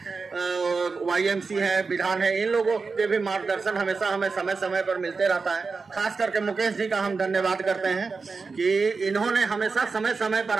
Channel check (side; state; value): left; quieter; 4.5 dB